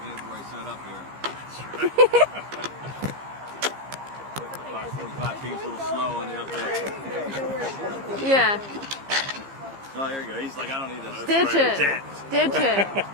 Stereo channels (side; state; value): left; late; 15 ms